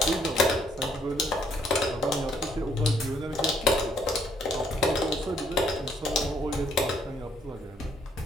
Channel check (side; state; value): both; normal; correlation 0.68